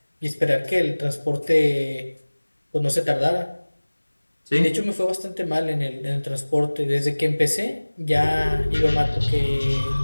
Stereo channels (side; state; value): both; inverted; correlation -1.00